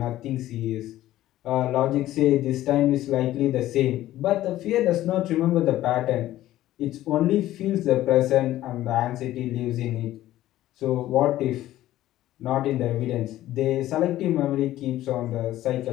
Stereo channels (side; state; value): right; quieter; 14.4 dB